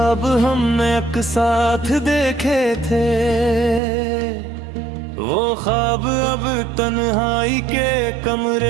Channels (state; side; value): drops out; left; at 3.8 s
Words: हमने एक साथ देखे थे, वो ख्वाब अब तन्हाई के